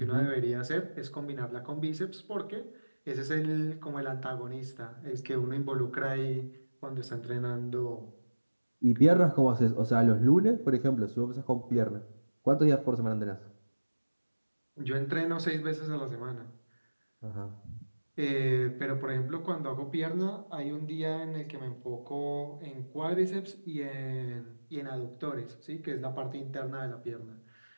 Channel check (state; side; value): inverted; both; correlation -1.00